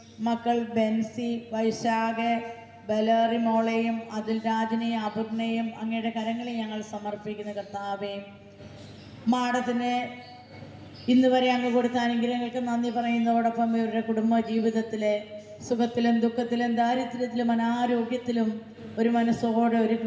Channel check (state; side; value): identical; both; correlation 1.00